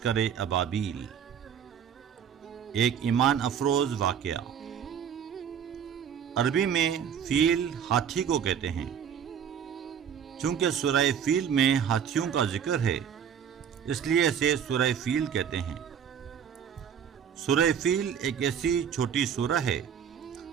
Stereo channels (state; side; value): quieter; left; 8.2 dB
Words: ابابیل، ایک ایمان افروز واقعہ۔ عربی میں فیل ہاتھی کو کہتے ہیں۔ چونکہ سورہ فیل میں ہاتھیوں کا ذکر ہے، اس لیے اسے سورہ فیل کہتے ہیں۔ سورہ فیل ایک ایسی چھوٹی سورہ ہے